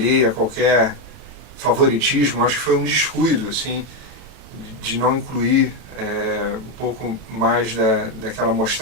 a qualquer favoritismo, acho que foi um descuido, assim, de não incluir um pouco mais daquela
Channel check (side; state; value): left; late; 32 ms